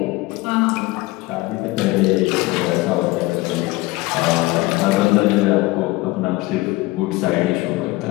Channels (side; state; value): right; quieter; 20.7 dB